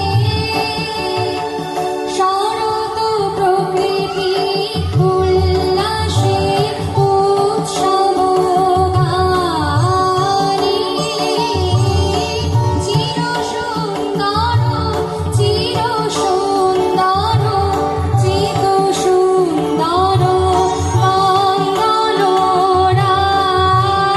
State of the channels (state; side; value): identical; both; correlation 1.00